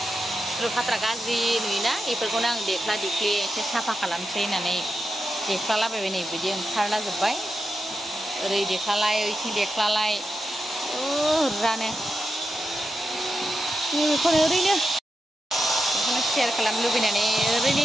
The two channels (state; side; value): normal; both; correlation 0.88